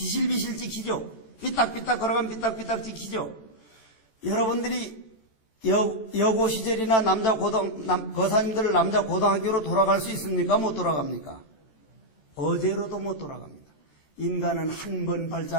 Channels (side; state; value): right; late; 14 ms